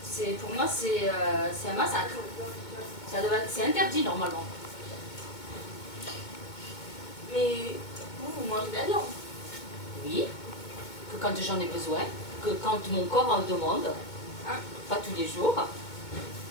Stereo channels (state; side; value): late; right; 2.2 ms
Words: Pour moi, c'est un massacre. C'est interdit normalement. Mais vous mangez de la viande. Oui, que quand j'en ai besoin, que quand mon corps en demande, hein, pas tous les jours.